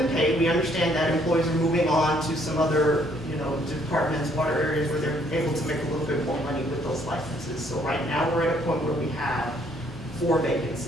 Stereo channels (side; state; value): both; normal; correlation 0.65